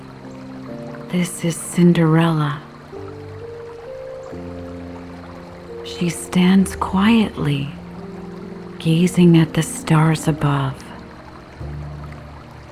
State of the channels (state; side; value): identical; both; correlation 1.00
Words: This is Cinderella. She stands quietly, gazing at the stars above.